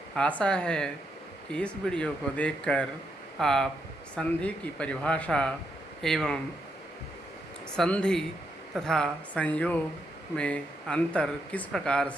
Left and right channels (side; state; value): both; normal; correlation 0.80